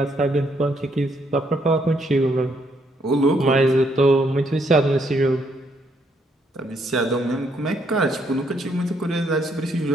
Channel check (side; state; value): both; normal; correlation 0.72